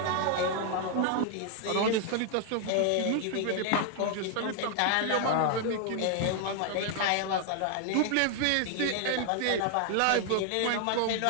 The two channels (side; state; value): both; different; correlation 0.00